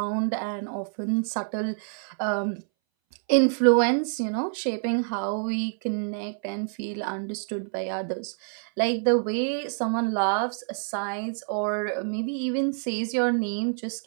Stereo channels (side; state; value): left; silent; 60 dB below the other